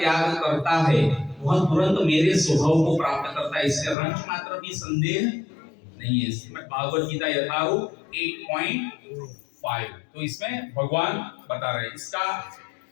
करता है वह तुरंत मेरे स्वभाव को प्राप्त करता है, इससे रंच मात्र भी संदेह नहीं है। श्रीमद् भागवत गीता यथारूप 8.5। तो इसमें भगवान बता रहे हैं। इसका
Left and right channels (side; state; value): right; drops out; at 4.0 s